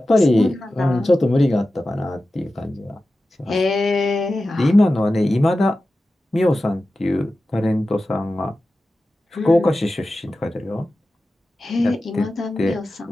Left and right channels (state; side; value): normal; both; correlation 0.94